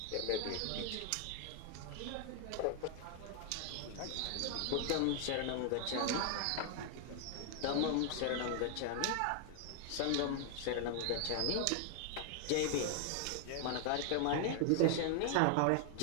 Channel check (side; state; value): both; different; correlation 0.00